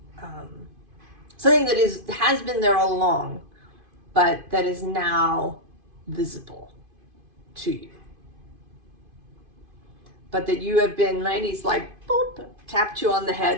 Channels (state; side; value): late; left; 2.5 ms